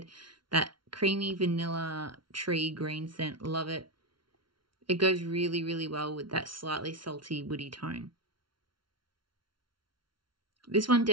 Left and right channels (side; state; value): left; late; 0.73 ms